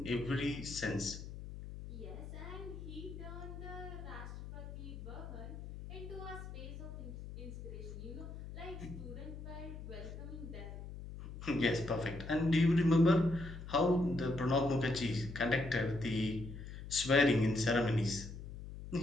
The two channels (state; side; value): noise; left; hum, 10 dB below the sound